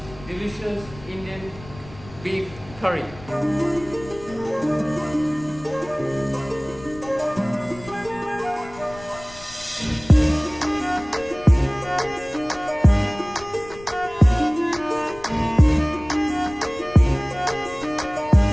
delicious Indian beef curry.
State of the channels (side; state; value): left; noise; rumble, 19 dB below the sound